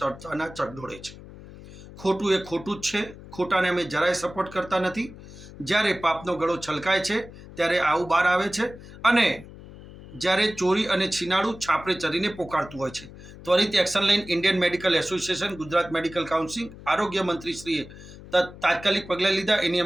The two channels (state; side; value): noise; left; hum, 17 dB below the sound